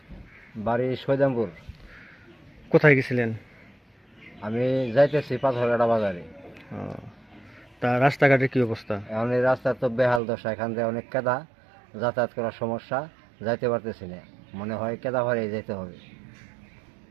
বাড়ি সৈদামপুর। কোথায় গেছিলেন? আমি যাইতেছি পাথরঘাটা বাজারে। ও, তা রাস্তাঘাটের কি অবস্থা? এখন এই রাস্তা তো বেহাল দশা, এখান থেকে অনেক কেদা, যাতায়াত করার সমস্যা, যাইতে পারতেছি না। মনে হয় কেদা ভরে যেতে হবে।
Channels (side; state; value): left; drops out; at 10.2 s